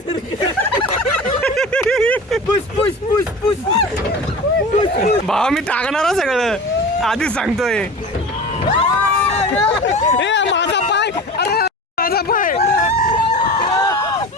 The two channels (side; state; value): both; normal; correlation 0.34